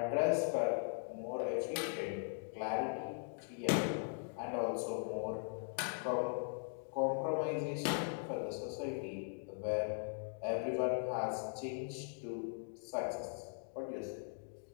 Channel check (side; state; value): right; silent; digital silence